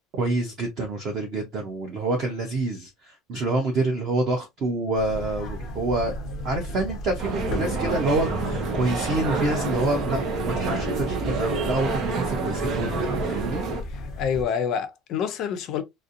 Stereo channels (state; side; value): normal; both; correlation 0.45